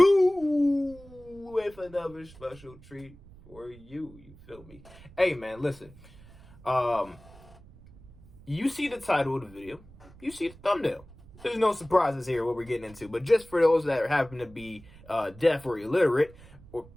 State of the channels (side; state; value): right; noise; rumble, 22 dB below the sound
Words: with another special treat for you. You feel me? Hey, man, listen. You see the title of the video. You see the thumbnail. There's no surprises here what we're getting into, but just for those that happen to be deaf or illiterate